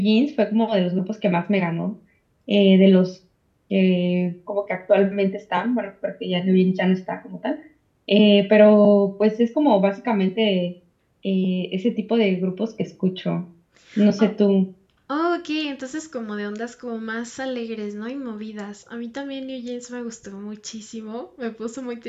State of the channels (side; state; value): both; identical; correlation 1.00